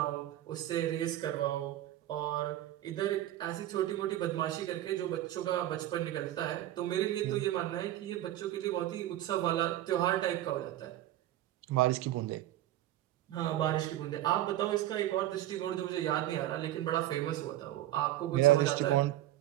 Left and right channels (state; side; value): quieter; left; 13.9 dB